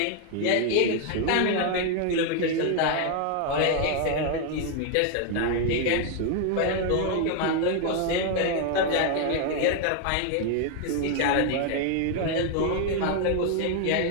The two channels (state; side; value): different; both; correlation 0.01